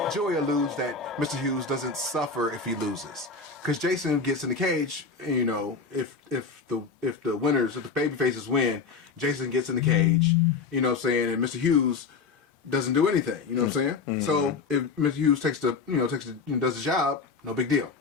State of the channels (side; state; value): right; quieter; 4.8 dB